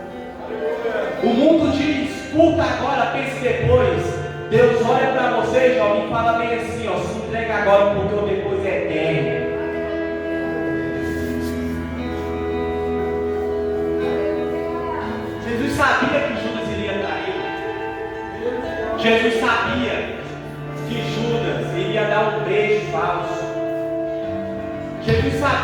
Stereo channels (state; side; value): identical; both; correlation 1.00